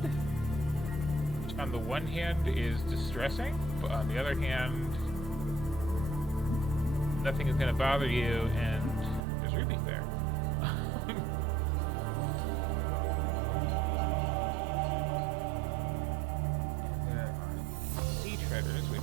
Which on the one hand is distressing, but on the other hand, nothing is going to bother you, and there's rubies there.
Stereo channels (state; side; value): drops out; left; at 9.2 s